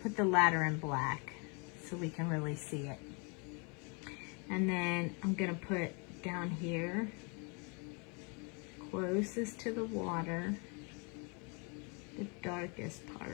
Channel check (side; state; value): right; quieter; 34.0 dB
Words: the ladder in black so we can really see it. And then I'm gonna put down here, closest to the water, the darkest